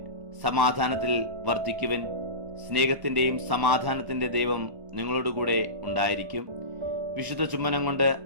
സമാധാനത്തിൽ വർദ്ധിക്കുവിൻ. സ്നേഹത്തിന്റെയും സമാധാനത്തിന്റെ ദൈവം നിങ്ങളോടുകൂടെ ഉണ്ടായിരിക്കും. വിശുദ്ധ ചുംബനം കൊണ്ട്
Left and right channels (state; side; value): late; left; 1.1 ms